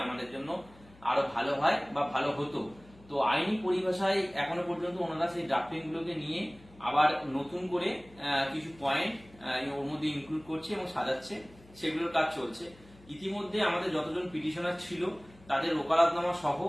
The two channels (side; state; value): left; noise; hum, 24 dB below the sound